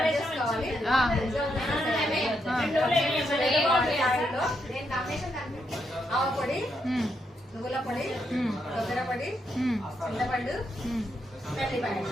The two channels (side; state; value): both; normal; correlation 0.80